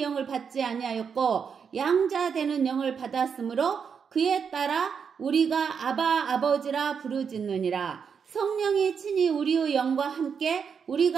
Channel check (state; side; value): quieter; left; 6.6 dB